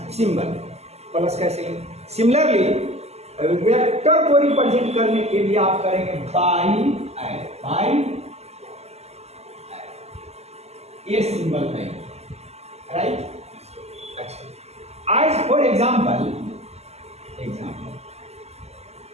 सिंबल। प्लस कैसे? सिमिलरली वेक्टर को रिप्रेजेंट करने के लिए आप करेंगे बाई ये सिंबल करेंगे, राइट। अच्छा, आज फॉर एग्जाम्पल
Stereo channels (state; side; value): late; left; 0.31 ms